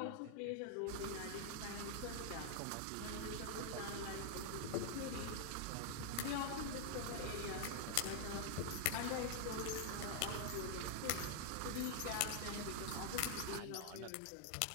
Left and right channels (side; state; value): both; different; correlation 0.00